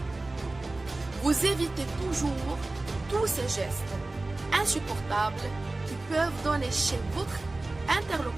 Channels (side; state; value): left; quieter; 3.0 dB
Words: Vous évitez toujours tous ces gestes insupportables qui peuvent donner chez votre